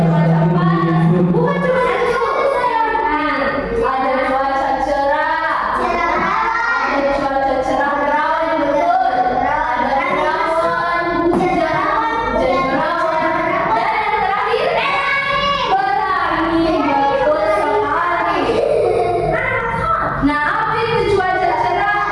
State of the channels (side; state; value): both; identical; correlation 1.00